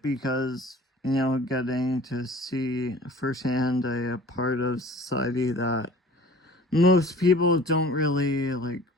because, getting to see firsthand a part of society that most people don't really like.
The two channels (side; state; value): both; normal; correlation 0.46